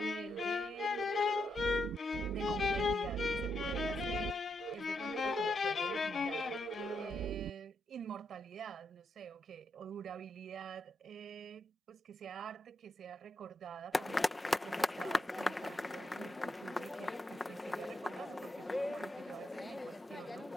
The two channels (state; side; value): normal; both; correlation 0.81